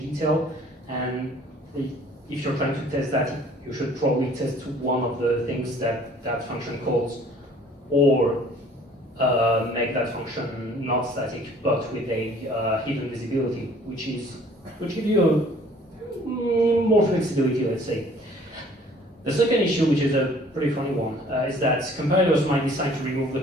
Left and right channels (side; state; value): both; normal; correlation 0.55